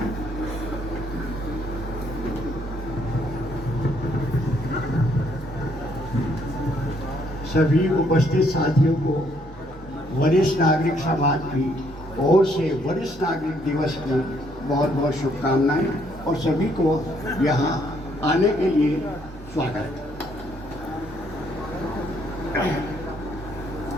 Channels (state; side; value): normal; both; correlation 0.69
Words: सभी उपस्थित साथियों को वरिष्ठ नागरिक समाज की ओर से वरिष्ठ नागरिक दिवस की बहुत बहुत शुभकामनाएं और सभी को यहाँ आने के लिए स्वागत।